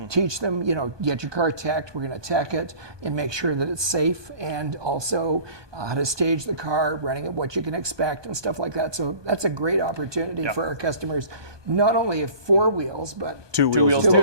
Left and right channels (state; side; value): late; left; 1.2 ms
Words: Teach them, get your car teched. We're going to tech it and make sure that it's safe, and also how to stage the car, running it, what you can expect and stuff like that. So that's a great opportunity for our customers, not only of 4 wheels, but two wheels.